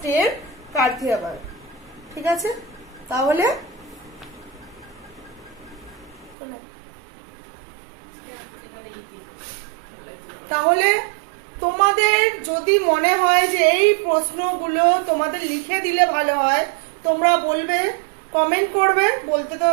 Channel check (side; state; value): left; drops out; at 6.4 s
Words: কাথিয়াবাড়। ঠিক আছে, তাহলে তোমাদের যদি মনে হয় যে এই প্রশ্নগুলো তোমাদের লিখে দিলে ভালো হয়, তোমরা বলবে, কমেন্ট করবে। বলতে তো